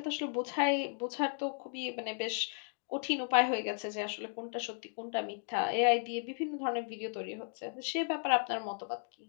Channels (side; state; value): right; silent; 54 dB below the other